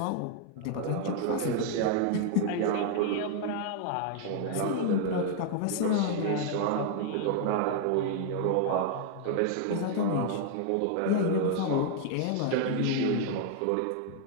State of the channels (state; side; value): different; both; correlation 0.00